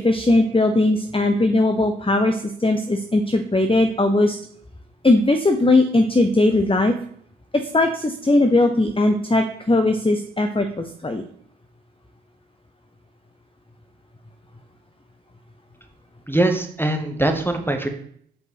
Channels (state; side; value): normal; both; correlation 0.78